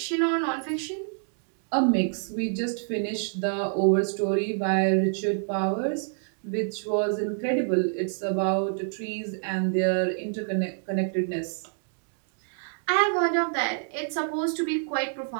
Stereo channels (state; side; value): silent; left; digital silence